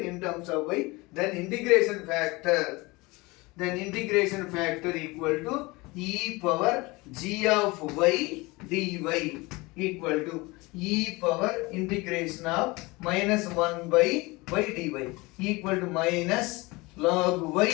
in terms of y. Then integration factor equal to e power g of y dy equal to e power integration of minus 1 by y dy equal to minus log y.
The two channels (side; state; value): right; quieter; 23.5 dB